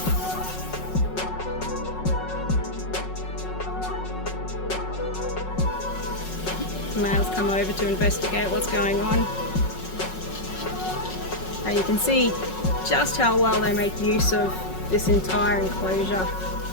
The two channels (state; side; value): late; right; 5.4 ms